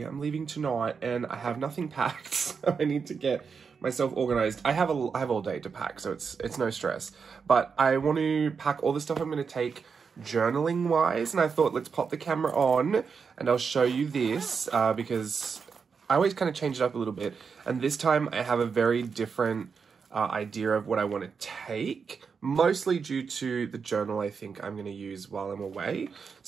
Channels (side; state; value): left; quieter; 5.8 dB